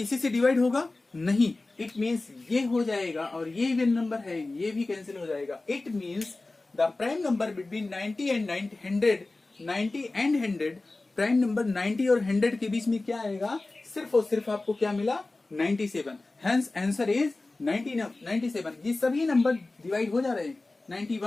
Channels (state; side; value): quieter; right; 3.2 dB